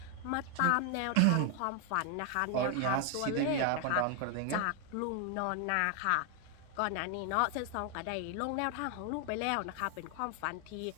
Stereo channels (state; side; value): different; both; correlation 0.01